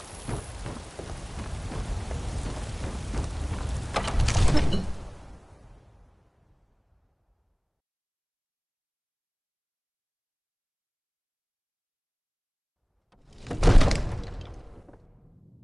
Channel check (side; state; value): both; identical; correlation 1.00